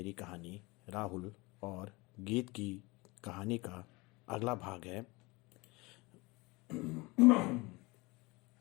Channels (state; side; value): quieter; right; 24.4 dB